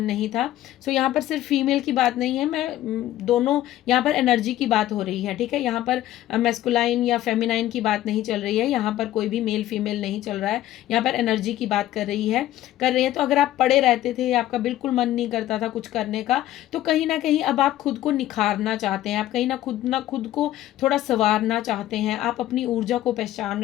नहीं था। सो यहाँ पर सिर्फ फीमेल की बात नहीं है, मैं दोनों यहाँ पर एनर्जी की बात हो रही है। ठीक है, यहाँ पर मैस्कुलाइन या फेमिनाइन की बात नहीं चल रही है, यहाँ पर कोई भी मेल फीमेल नहीं चल रहा है, यहाँ पर एनर्जी की बात कर रही है। तो अगर आप पड़े रहते थे, आपका बिल्कुल मन नहीं करता था कुछ करने का, तो कहीं ना कहीं अब आप खुद को निखारना चाहते हैं, आप कहीं ना खुद को थोड़ा संवारना चाहते हैं, आप अपनी ऊर्जा को पहचान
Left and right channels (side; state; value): right; quieter; 13.9 dB